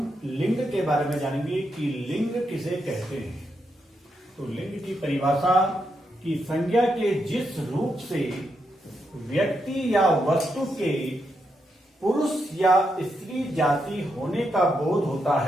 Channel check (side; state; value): both; normal; correlation 0.82